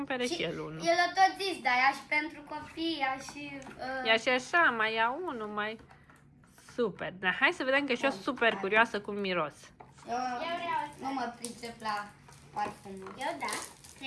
și el unul. El a tot zis, dar ia și pentru copii, ia și... Ia și așa, mai ia unul, mai... Super. Dar hai să vedem că și eu super curioasă cum miros. Nu mă pricep la parfumul. Eu da,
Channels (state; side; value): identical; both; correlation 1.00